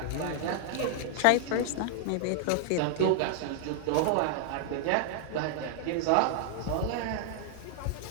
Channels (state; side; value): different; both; correlation 0.00